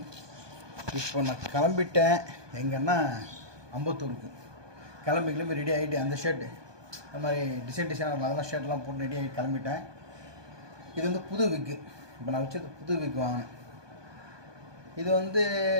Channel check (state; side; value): late; left; 1.2 ms